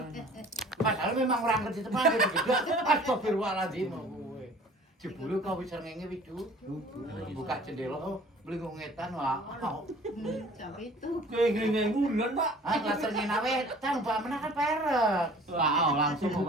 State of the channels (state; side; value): normal; both; correlation 0.49